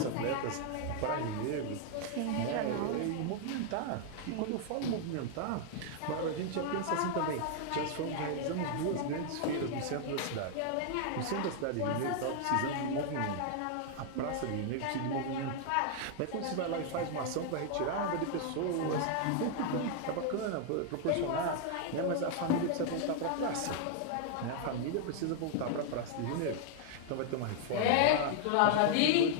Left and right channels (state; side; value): different; both; correlation 0.00